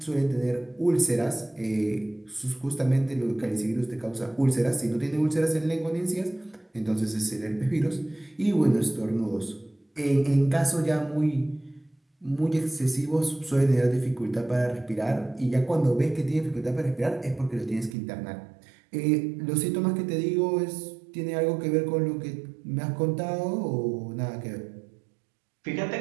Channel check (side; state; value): left; drops out; at 17.9 s